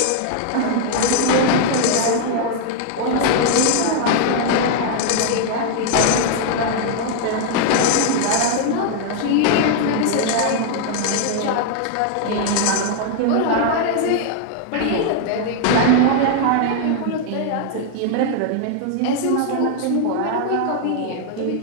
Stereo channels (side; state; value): both; different; correlation 0.00